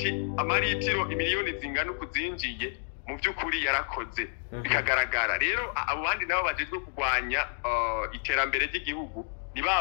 amaritiro imiliyoni zingana kuzinjiye mu by'ukuri yarakoze bikagaragara rero abo bandi nabo bagezwe kugwanya iterambere ry'igihugu ni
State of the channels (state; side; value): silent; right; 57 dB below the other